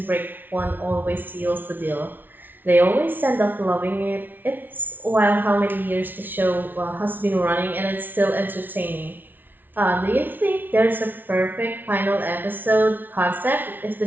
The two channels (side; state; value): left; late; 0.089 ms